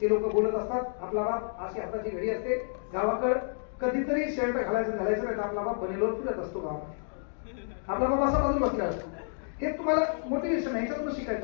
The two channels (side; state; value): right; silent; digital silence